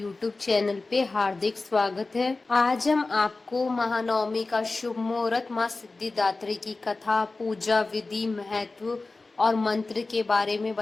चैनल पे हार्दिक स्वागत है। आज हम आपको महानवमी का शुभ मुहूर्त, माँ सिद्धिदात्री की कथा, पूजा विधि, महत्व और मंत्र के बारे में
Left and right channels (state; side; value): quieter; right; 3.5 dB